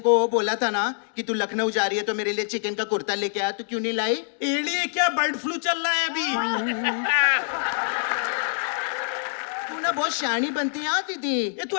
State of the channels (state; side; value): silent; right; digital silence